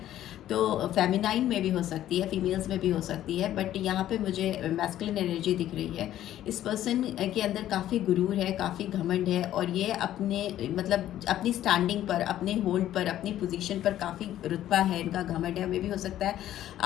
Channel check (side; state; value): right; quieter; 12.6 dB